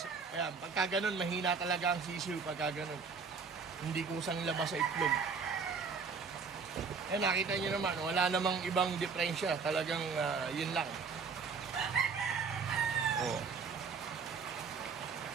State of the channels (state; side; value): quieter; left; 5.3 dB